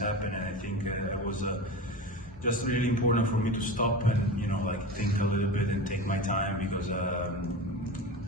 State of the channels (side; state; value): both; normal; correlation 0.28